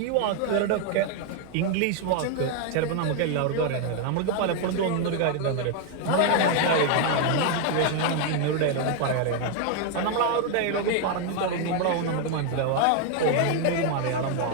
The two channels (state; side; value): different; both; correlation 0.00